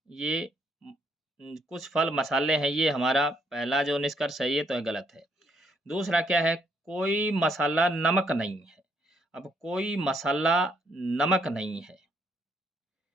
ये कुछ फल मसाले हैं, ये हमारा पहला जो निष्कर्ष है ये तो गलत है। दूसरा क्या है, कोई मसाला नमक नहीं है। अब कोई मसाला नमक नहीं है।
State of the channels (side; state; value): both; normal; correlation 0.72